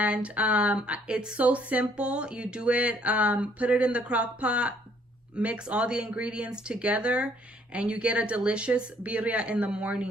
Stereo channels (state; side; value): normal; both; correlation 0.64